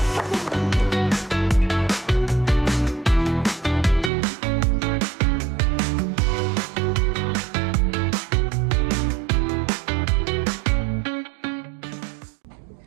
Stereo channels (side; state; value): left; drops out; at 4.1 s